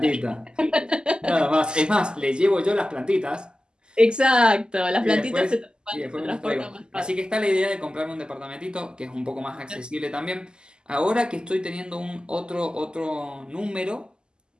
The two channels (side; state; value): left; late; 0.047 ms